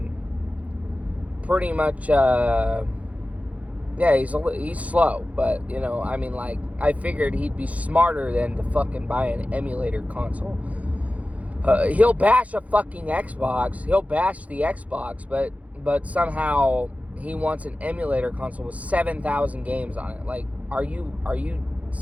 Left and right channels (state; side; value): late; left; 0.068 ms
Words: pretty much, he's slow, but, I figured he'd be smarter than to fucking buy an emulator console. He'll bash a fucking Xbox, he'll bash the Xbox, but somehow he wants an emulator console with 7,000 games on it. Like, are you